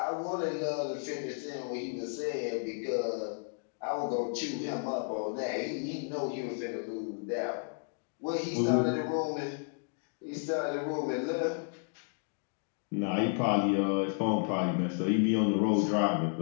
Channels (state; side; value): silent; right; 56 dB below the other